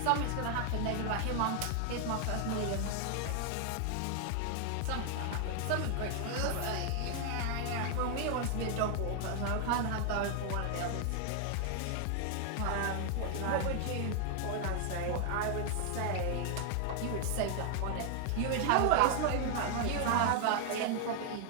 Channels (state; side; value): different; both; correlation 0.00